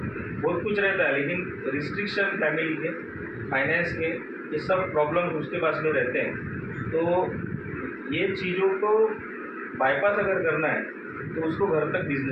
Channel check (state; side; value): identical; both; correlation 1.00